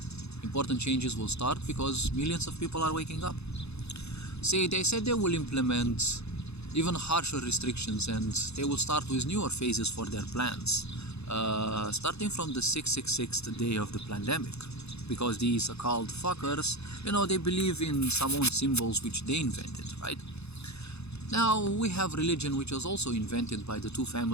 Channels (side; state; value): right; late; 0.79 ms